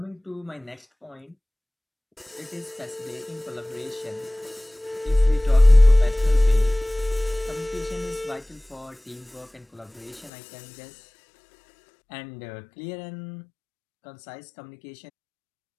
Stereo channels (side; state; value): right; drops out; at 10.3 s